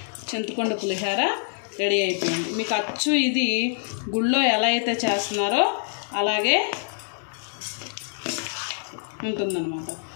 చింతపండు పులిహోర రెడీ అయిపోయింది. మీకు అచ్చు ఇది గుళ్ళో ఎలా అయితే చేస్తున్నారో అలాగే ఉంటుందన్నమాట.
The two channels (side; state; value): right; silent; digital silence